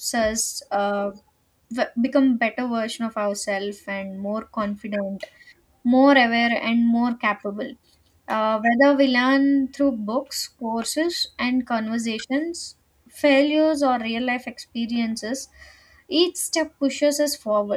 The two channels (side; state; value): both; identical; correlation 1.00